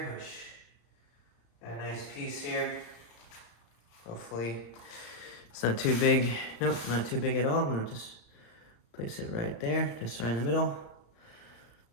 which got a nice piece here. Hopefully it's not too big. Nope, not too big at all. I'm gonna just place it right there, just right in the middle.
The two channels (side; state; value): right; late; 35 ms